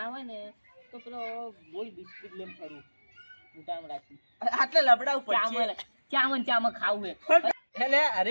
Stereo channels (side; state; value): both; inverted; correlation -1.00